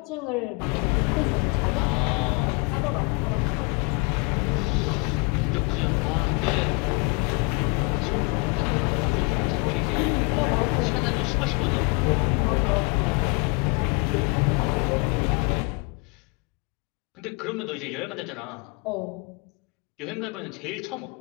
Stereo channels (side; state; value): right; quieter; 29.8 dB